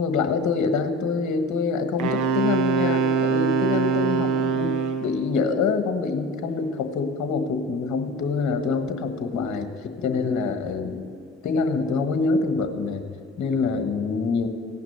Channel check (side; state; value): both; normal; correlation 0.38